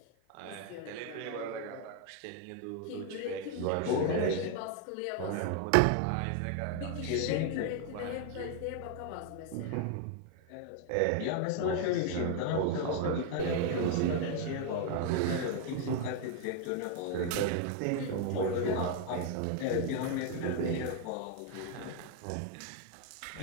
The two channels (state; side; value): different; both; correlation 0.00